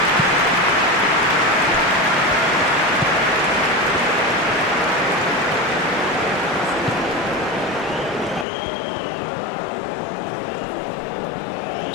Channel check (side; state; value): right; drops out; at 8.5 s